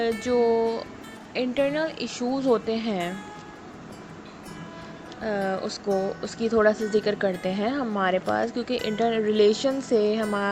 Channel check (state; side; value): identical; both; correlation 1.00